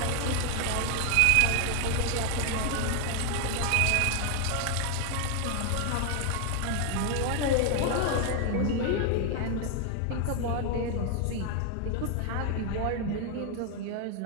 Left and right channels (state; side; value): different; both; correlation 0.00